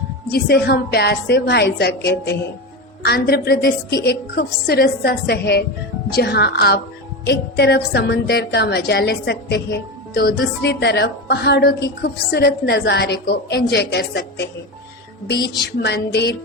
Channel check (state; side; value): normal; both; correlation 0.20